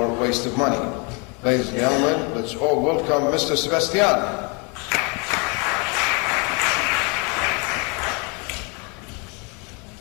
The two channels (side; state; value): right; quieter; 32.2 dB